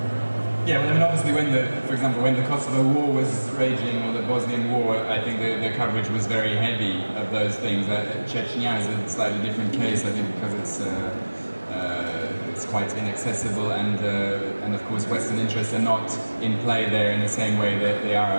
Yeah, well, I mean, obviously, for example, when the Kosovo War was raging, or the Bosnian War, I think the coverage was very heavy of those things. Chechnya is a slightly different case, I think, because it's quite inaccessible, and of course, Western interests are not in play there in the same way that they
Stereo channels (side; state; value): both; inverted; correlation -1.00